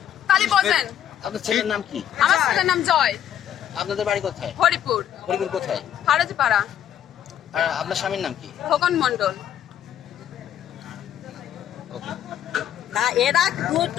তাহলে বোঝেন। আপনার ছেলের নাম কি? আমার ছেলের নাম জয়। আপনাদের বাড়ি কোথায়? হরিপুর। কোথায়? ফারাজিপাড়া। আর আপনার স্বামীর নাম কি? খোকন মন্ডল। এরা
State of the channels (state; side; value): quieter; right; 10.2 dB